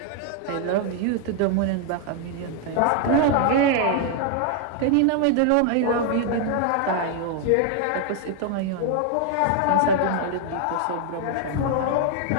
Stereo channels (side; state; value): both; different; correlation 0.00